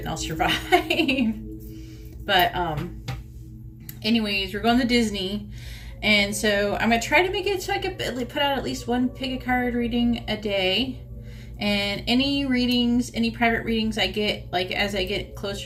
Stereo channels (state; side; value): identical; both; correlation 1.00